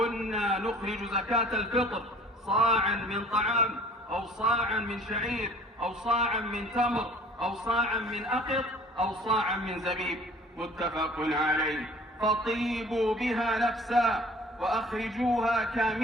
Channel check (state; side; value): normal; both; correlation 0.50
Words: نخرج زكاة الفطر صاعا من طعام، أو صاعا من شعير، أو صاعا من تمر، أو صاعا من أقط، أو صاعا من زبيب، متفق عليه. فطيبوا بها نفسا وأخرجوها